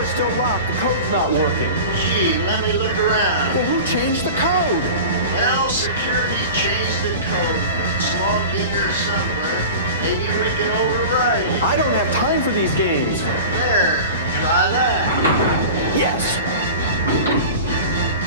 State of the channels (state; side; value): inverted; both; correlation -0.34